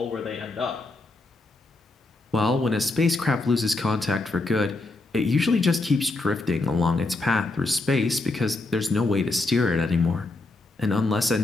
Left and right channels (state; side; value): quieter; right; 3.1 dB